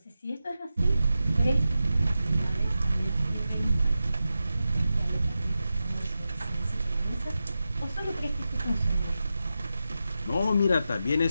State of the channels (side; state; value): both; inverted; correlation -0.91